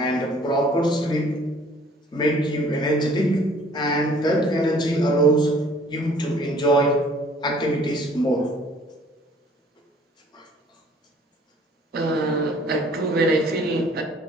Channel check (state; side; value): normal; both; correlation 0.56